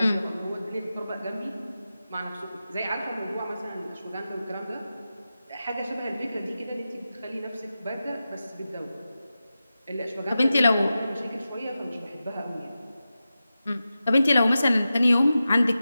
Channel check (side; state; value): both; inverted; correlation -0.93